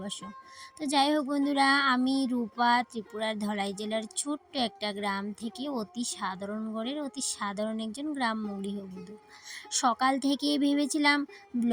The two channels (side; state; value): both; identical; correlation 1.00